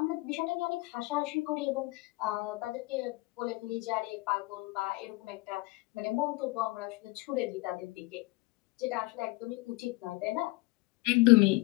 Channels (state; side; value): quieter; right; 23.0 dB